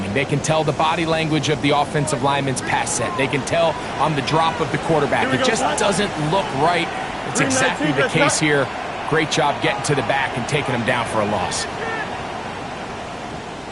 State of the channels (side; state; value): both; identical; correlation 1.00